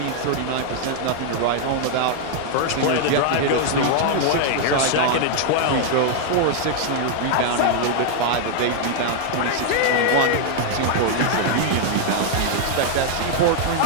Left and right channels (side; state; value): both; different; correlation 0.00